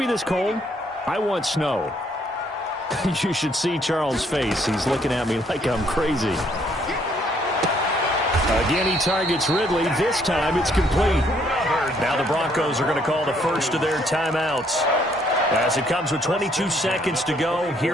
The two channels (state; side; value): normal; both; correlation 0.67